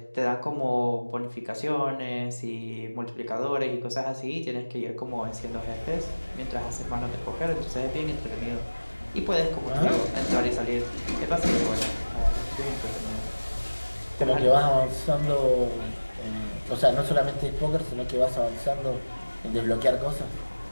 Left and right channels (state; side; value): inverted; both; correlation -1.00